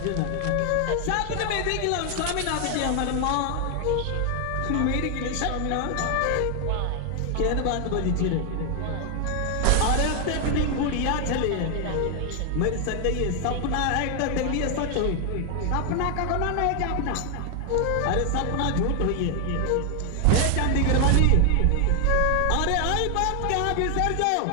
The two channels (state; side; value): different; both; correlation 0.00